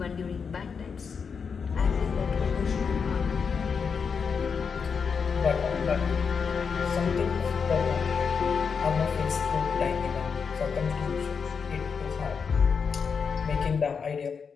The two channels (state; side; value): quieter; right; 5.9 dB